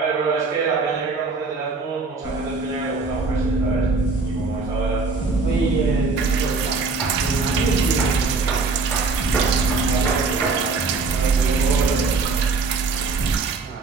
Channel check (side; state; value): left; quieter; 4.2 dB